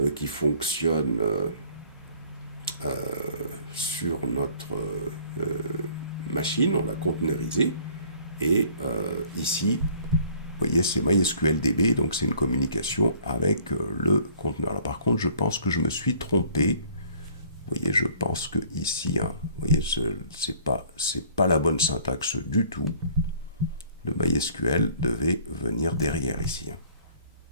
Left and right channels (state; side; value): inverted; both; correlation -0.55